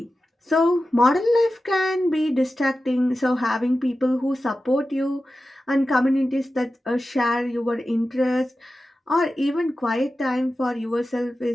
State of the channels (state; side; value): normal; both; correlation 0.93